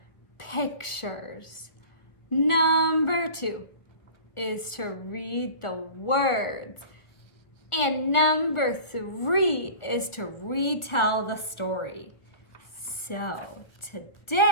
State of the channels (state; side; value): late; right; 1.6 ms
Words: pictures. Number 2 is to read the words. And number 3 is to retell the story. So